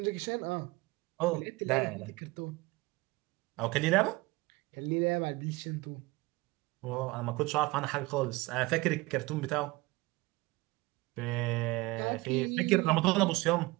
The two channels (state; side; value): quieter; left; 22.2 dB